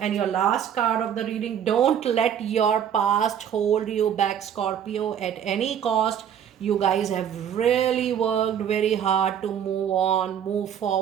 your last card of the reading, don't let your past hold you back, Scorpio, at any cost. You guys have really worked very hard to move on, move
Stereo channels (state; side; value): quieter; left; 9.0 dB